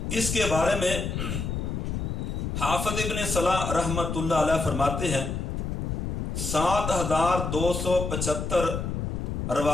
اس کے بارے میں حافظ ابن صلاح رحمت اللہ علیہ فرماتے ہیں 7275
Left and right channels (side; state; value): left; noise; rumble, 2 dB below the sound